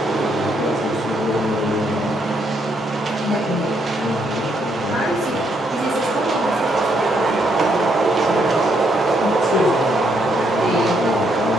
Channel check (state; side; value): normal; both; correlation 0.74